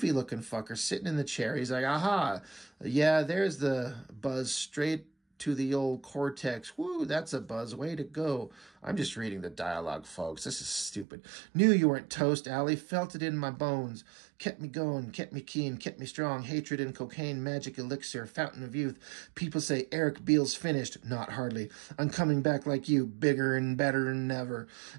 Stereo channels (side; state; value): left; drops out; at 11.1 s